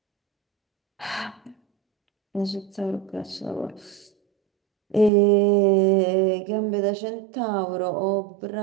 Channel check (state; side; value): drops out; left; at 5.1 s